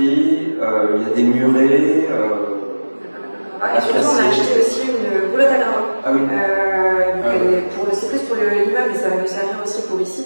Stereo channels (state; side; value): inverted; both; correlation -1.00